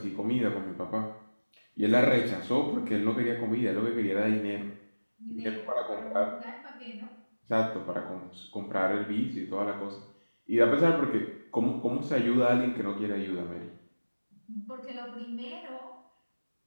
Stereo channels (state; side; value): inverted; both; correlation -1.00